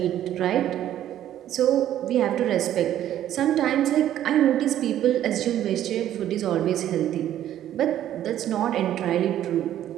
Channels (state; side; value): quieter; left; 11.8 dB